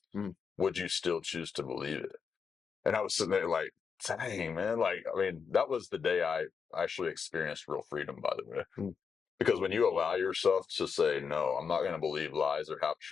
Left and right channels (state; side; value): quieter; right; 6.1 dB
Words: Would you still choose to believe it? And I was sitting there like, dang, man. Like, I mean, that was the day I actually experienced real freedom, by the way. Because when you allow yourself to say, no, I'm not going to believe lies or half